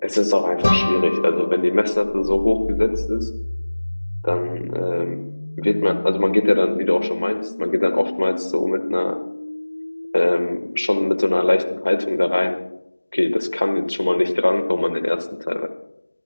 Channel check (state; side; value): inverted; both; correlation -1.00